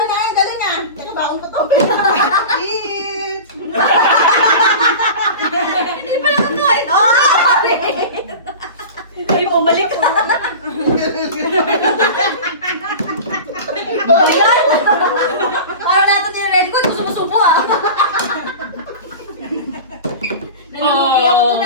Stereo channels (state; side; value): inverted; both; correlation -0.33